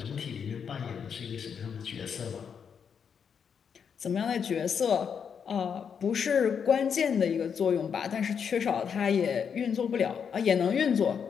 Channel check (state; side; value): quieter; right; 7.0 dB